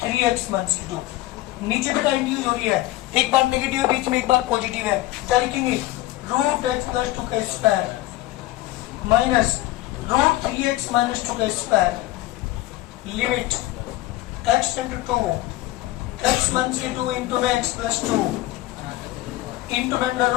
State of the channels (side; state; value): right; quieter; 16.9 dB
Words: 3x माइनस की 2। नीचे बेटा इंट्रोड्यूस हो रही है, एक बार नेगेटिव है बीच में एक बार पॉजिटिव है, क्या लिखेंगे रूट एक्स प्लस 2 का square minus root 3x minus 2 का square. Limit x into 2 x minus के 2 इंटू में x plus 2 into under